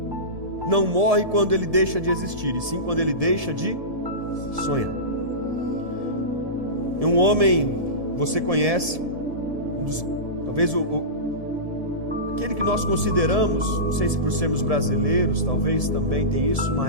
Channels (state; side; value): late; left; 1.7 ms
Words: não morre quando ele deixa de existir, e sim quando ele deixa de sonhar. E um homem, você conhece, talvez aquele que nós consideramos, não sei se por sermos brasileiros, talvez também tem isso,